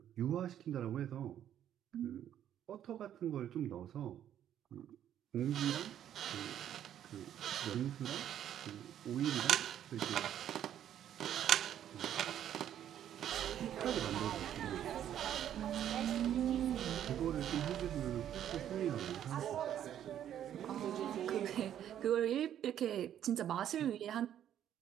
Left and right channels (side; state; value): left; quieter; 10.6 dB